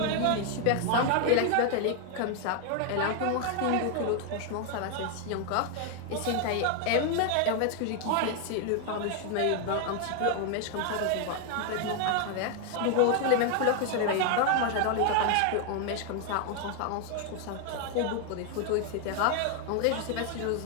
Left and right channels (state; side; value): different; both; correlation 0.00